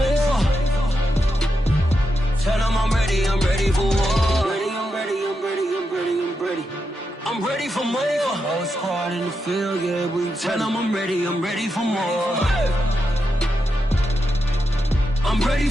Tell them I'm ready for war. I'm ready for more. Whole squad in the field, yeah, we tell them I'm ready for more. I'm ready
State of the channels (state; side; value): normal; both; correlation 0.85